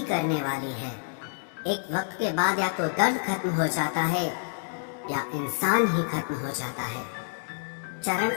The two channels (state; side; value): silent; right; digital silence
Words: करने वाली है। एक वक्त के बाद या तो दर्द खत्म हो जाता है या इंसान ही खत्म हो जाता है। चरण